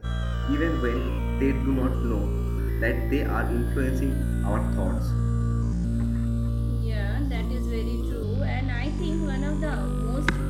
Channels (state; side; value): identical; both; correlation 1.00